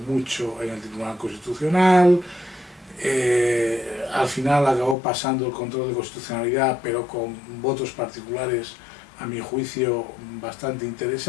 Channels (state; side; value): drops out; right; at 5.0 s